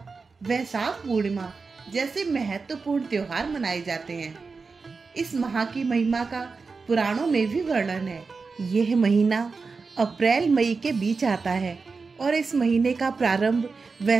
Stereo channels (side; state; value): left; quieter; 4.5 dB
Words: वैशाख पूर्णिमा जैसे महत्वपूर्ण त्योहार मनाए जाते हैं। इस माह की महिमा का पुराणों में भी वर्णन है। यह महीना अप्रैल मई के बीच आता है और इस महीने का प्रारंभ